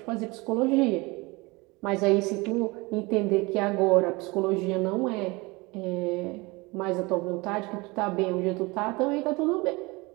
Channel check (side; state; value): left; quieter; 24.6 dB